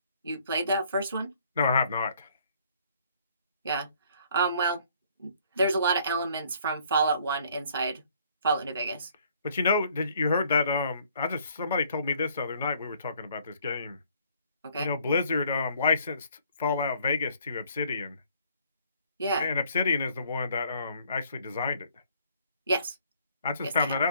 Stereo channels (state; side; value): inverted; both; correlation -0.61